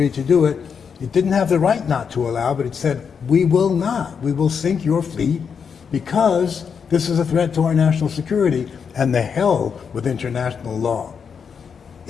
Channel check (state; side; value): quieter; right; 6.5 dB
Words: to do it, it didn't have the right not to allow, but it said, we will not. We will sink your fleet because this is a threat to our national security, and the hell with international law.